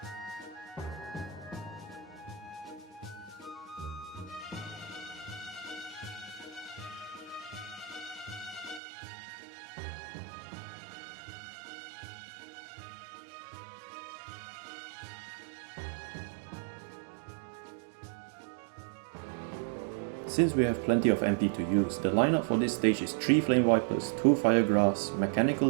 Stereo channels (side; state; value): left; drops out; at 8.8 s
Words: Since we have plenty of MP to use, the lineup for this stage is 3 Flame Vipers, 2 Fire Grass,